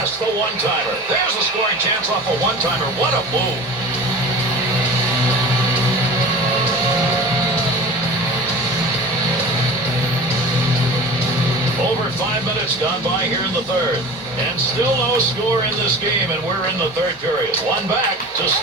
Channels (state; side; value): normal; both; correlation 0.37